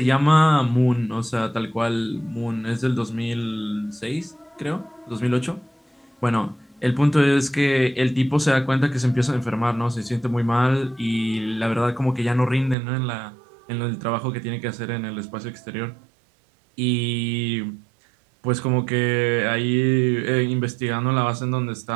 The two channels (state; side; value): drops out; left; at 12.8 s